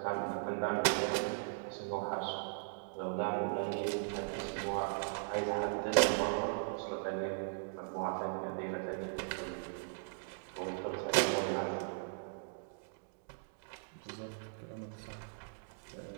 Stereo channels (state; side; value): silent; left; digital silence